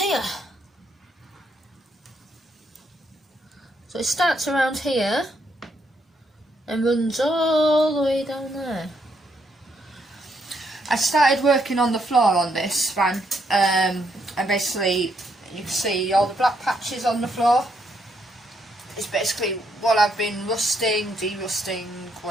So it starts around here and runs all the way down there. I started working on the floor on this van, and basically you can see all the black patches on the floor. It's basically what I've been rusting, derusting,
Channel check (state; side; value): normal; both; correlation 0.75